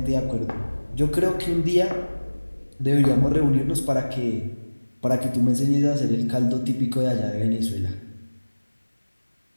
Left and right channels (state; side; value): inverted; both; correlation -1.00